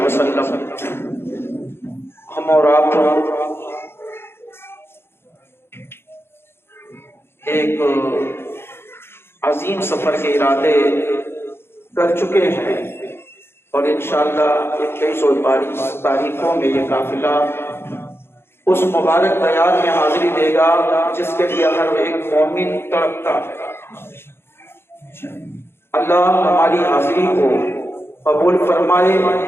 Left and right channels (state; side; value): late; right; 0.11 ms